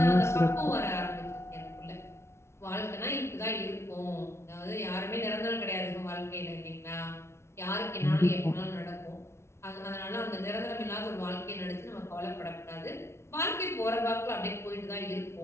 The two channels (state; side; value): late; right; 0.13 ms